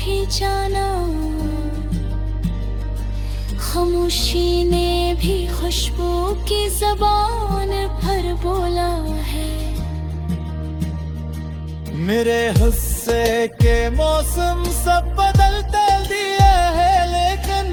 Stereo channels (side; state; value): both; identical; correlation 1.00